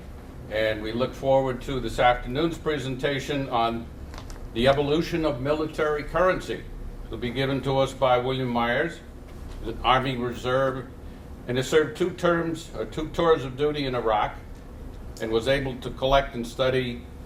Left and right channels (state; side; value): identical; both; correlation 1.00